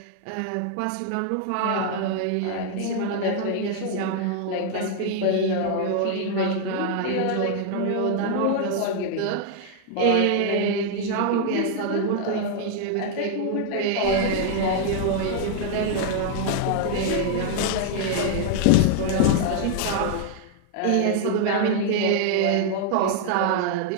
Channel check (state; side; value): different; both; correlation 0.00